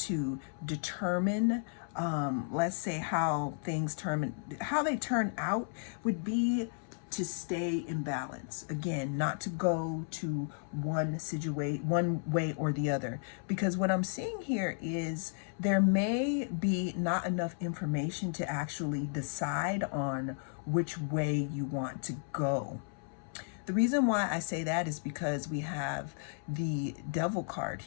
determine let's say how they turn out would be to stay in balance. Again, not to go to one way or the other, because what I'm seeing here is there may be not enough information to actually decide on which way you want to go. The reason why I say that is because we have the Devil card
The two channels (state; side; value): silent; right; 55 dB below the other